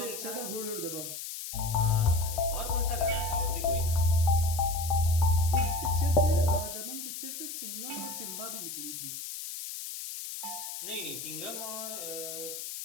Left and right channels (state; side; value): noise; left; hiss, 7 dB below the sound